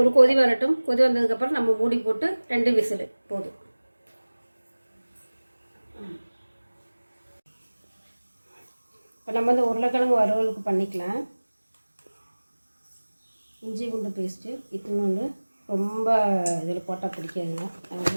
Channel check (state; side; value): inverted; both; correlation -1.00